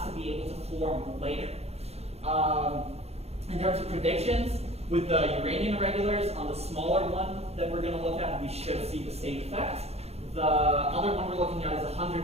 to be able to form later. In terms of predictions, with the Uranian irregulars, on the smaller one that we're going to look at, we should see the same effect. The other one we're looking at is a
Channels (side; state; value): left; late; 0.30 ms